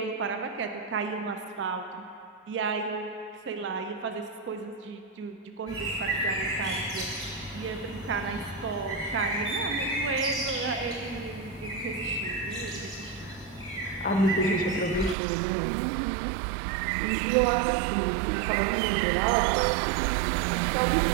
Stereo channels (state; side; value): drops out; left; at 15.2 s